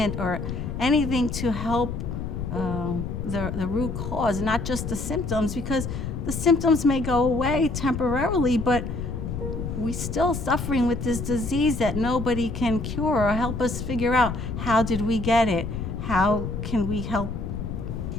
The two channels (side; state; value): left; noise; rumble, 5 dB below the sound